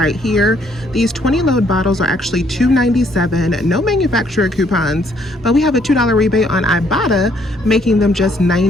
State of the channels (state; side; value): normal; both; correlation 0.67